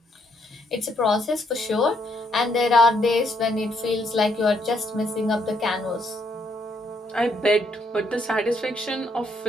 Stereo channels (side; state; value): both; normal; correlation 0.73